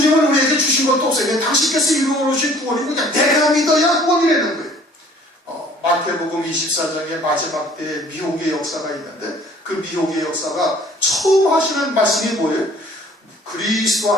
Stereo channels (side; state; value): both; normal; correlation 0.53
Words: 우리에게 주신 것도 없어요. 그냥 당신께서 이루어주신 구원이 그냥 내가 믿어야 구원이라는 거예요. 마태복음 24장의 마지막 때에 미혹의 역사가 있는데, 그 미혹의 역사가 처음 하시는 말씀이 뭐예요? 그리스도